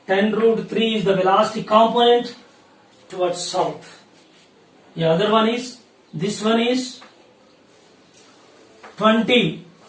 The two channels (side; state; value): both; identical; correlation 1.00